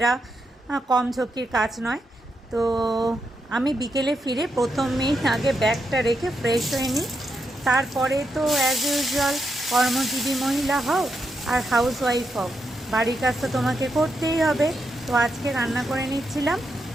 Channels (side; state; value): both; normal; correlation 0.83